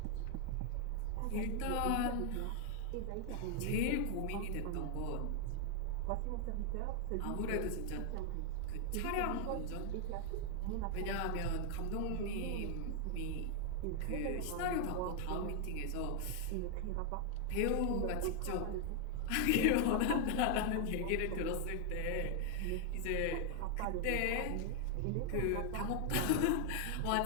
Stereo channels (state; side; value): different; both; correlation 0.00